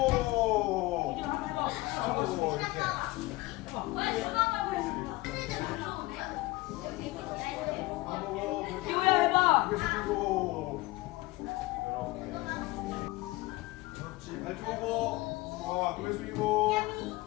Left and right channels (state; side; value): quieter; right; 20.6 dB